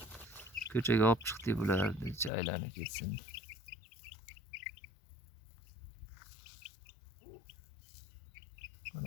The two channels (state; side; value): drops out; right; at 2.3 s